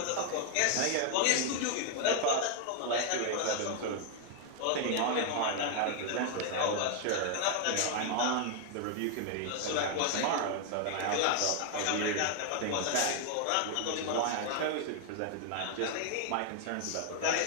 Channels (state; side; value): different; both; correlation 0.00